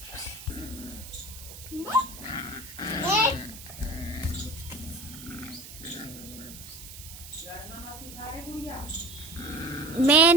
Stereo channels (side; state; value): right; noise; hiss, 14 dB below the sound